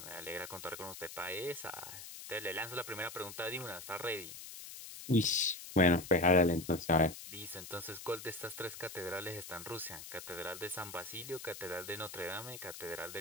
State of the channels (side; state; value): left; noise; hiss, 12 dB below the sound